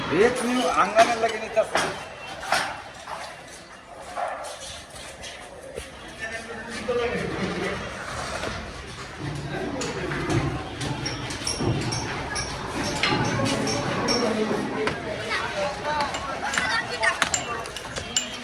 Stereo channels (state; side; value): identical; both; correlation 1.00